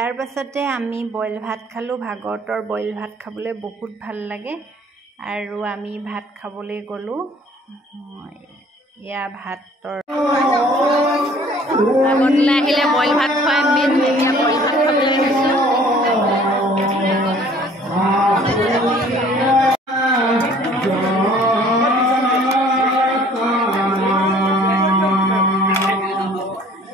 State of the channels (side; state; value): both; normal; correlation 0.54